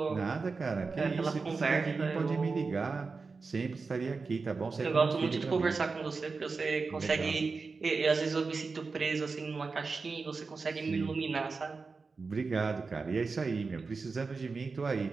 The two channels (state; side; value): quieter; left; 4.4 dB